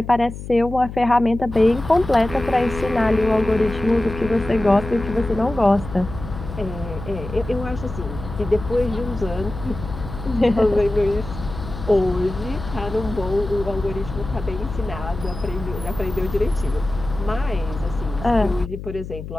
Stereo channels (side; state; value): left; noise; hum, 10 dB below the sound